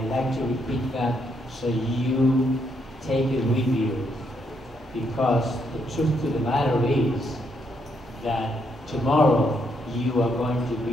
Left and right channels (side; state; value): both; normal; correlation 0.76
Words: like to repeat that so you take it with you. Because the truth of the matter is that tomorrow you are going to